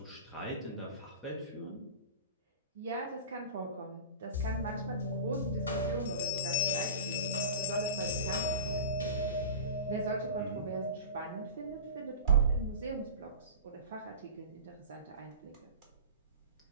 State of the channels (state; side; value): inverted; both; correlation -0.34